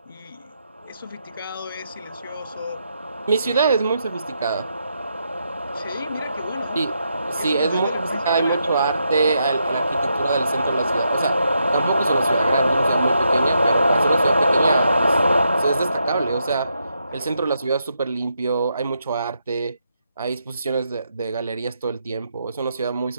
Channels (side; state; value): both; inverted; correlation -0.81